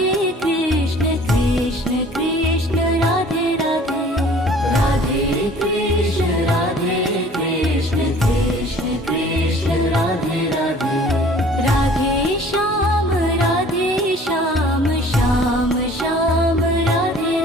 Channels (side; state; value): both; normal; correlation 0.51